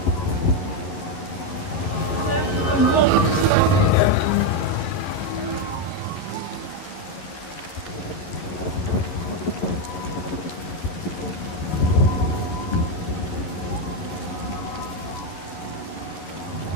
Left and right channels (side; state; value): right; late; 11 ms